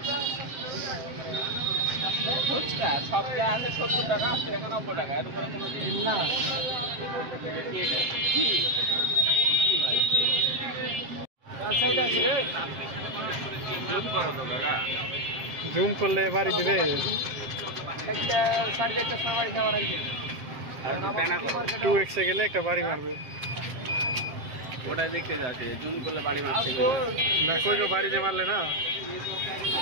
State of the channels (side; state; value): left; late; 7.6 ms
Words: ফুচকা সব যা আছে 70 টাকা 80 টাকা 90 টাকা এর উপরে কোনো জিনিস না কি সাইড আছে রে জুম করো তো কাকা। জুম করলে বাড়ি দিবে। একটা 4.5টা সময় নেওয়ার আগে টু এক্সে গেলে একটা বাড়ি মারবে। ওটা দেখতে যাচ্ছে জুম করলে বাড়ি মারছে না কই বাড়ি যে মারলে না।